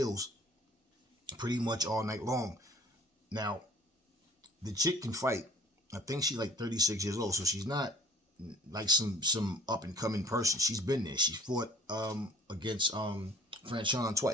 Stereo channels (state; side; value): normal; both; correlation 0.50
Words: pretty much all night long. Now, the chick can fight. I think she's like 36 years old, so she's not like some up and coming person. She's been there. She fought against Franchon